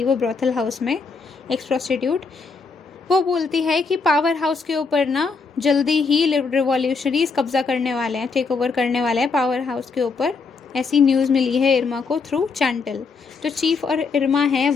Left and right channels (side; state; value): right; quieter; 4.7 dB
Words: वो ब्रॉथल हाउस में एक्स प्रोस्टिट्यूट। वो बोलती है कि पावर हाउस के ऊपर ना जल्दी ही रिवॉल्यूशनरीज कब्जा करने वाले हैं, टेक ओवर करने वाले हैं पावर हाउस के ऊपर, ऐसी न्यूज़ मिली है इरमा को थ्रू चांटल। जो चीफ और इरमा हैं